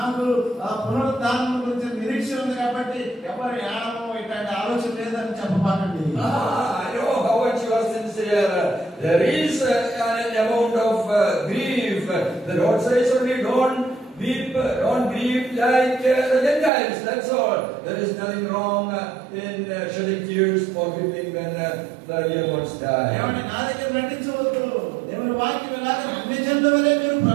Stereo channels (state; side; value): drops out; left; at 16.7 s